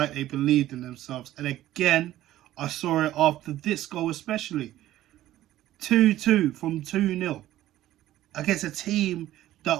they believed in themselves. And again, I saw it after this goal especially. 2-2 from 2-0 against a team that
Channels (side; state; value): left; quieter; 14.2 dB